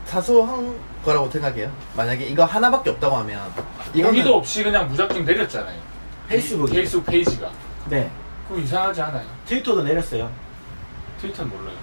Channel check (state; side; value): inverted; both; correlation -1.00